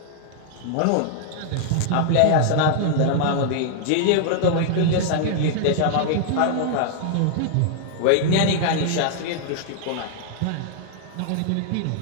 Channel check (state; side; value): different; both; correlation -0.01